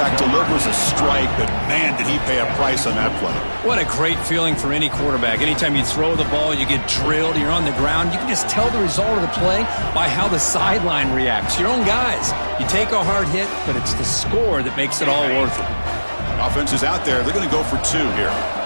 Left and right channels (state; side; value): inverted; both; correlation -1.00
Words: delivers a strike, but man, did he pay a price on that play. What a great feeling for any quarterback. Anytime you throw the ball, you get drilled, you're on the ground. You can just tell the result of the play by how the sideline reacts. Your own guys. You take a hard hit, but it's the score that makes it all worth it. Offense is out there. They're going to go for 2 here.